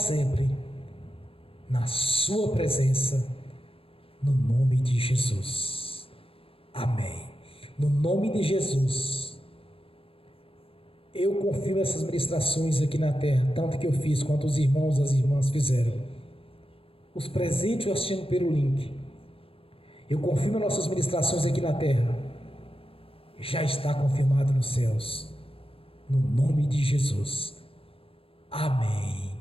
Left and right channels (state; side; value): late; right; 0.27 ms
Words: na sua presença, no nome de Jesus. Amém. No nome de Jesus, eu confirmo essas ministrações aqui na terra, tanto que eu fiz quanto os irmãos e as irmãs fizeram. Os presentes eu assistindo pelo link. Eu confirmo nossas ministrações aqui na terra. Já está confirmado nos céus. No nome de Jesus. Amém.